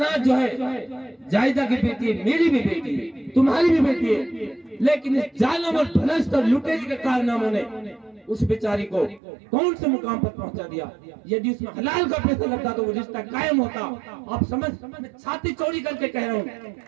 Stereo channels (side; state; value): left; drops out; at 9.2 s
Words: जो है जायदा की बेटी है, मेरी भी बेटी है, तुम्हारी भी बेटी है, लेकिन इस जालिम और भ्रष्ट और लुटेरी के कारनामों ने उस बेचारी को कौन से मुकाम पर पहुंचा दिया। यदि उसमें हलाल का पैसा लगता तो वो रिश्ता कायम होता। आप समझ, मैं छाती चौड़ी करके कह रहा हूँ,